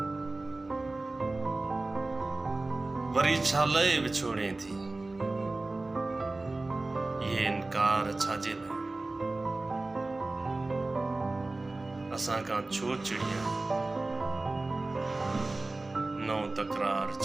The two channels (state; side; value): quieter; left; 3.1 dB